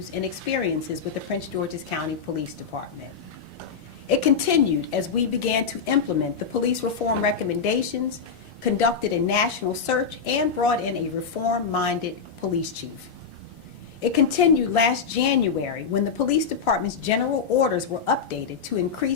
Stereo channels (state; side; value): quieter; right; 5.9 dB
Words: and experiences with the Prince George's County Police Department. It continued as we began to implement the police reform recommendations, conducted a national search, and brought in a reform-minded police chief. It continued last January when the police department's general orders were updated to